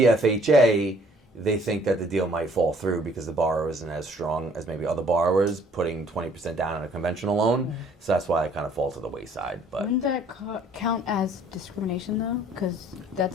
FHA, they think that the deal might fall through because the borrower isn't as strong as maybe other borrowers putting 20% down on a conventional loan. So that's why it kind of falls to the wayside. But Wouldn't that count as discrimination though? Because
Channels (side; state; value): both; normal; correlation 0.59